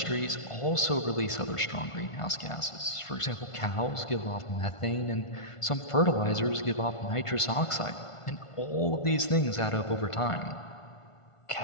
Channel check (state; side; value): late; right; 1.5 ms